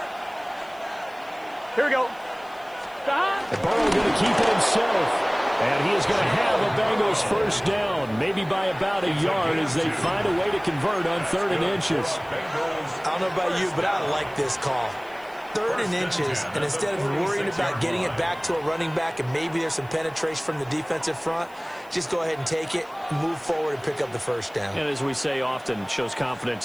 Here we go. And Burrow going to keep it himself. And he is going to have a Bengals first down, maybe by about a yard as they find a way to convert on 3rd and inches. I don't know about you, but I like this call. 3rd and inches, and instead of worrying about getting it back to a running back and maybe there's some penetration from the defensive front, just go ahead and take it, move forward, and pick up the first down. And as we say often, shows confidence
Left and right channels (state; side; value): noise; left; hiss, 27 dB below the sound